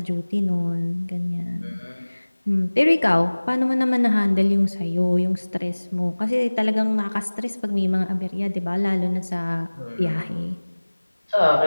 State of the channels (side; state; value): both; inverted; correlation -1.00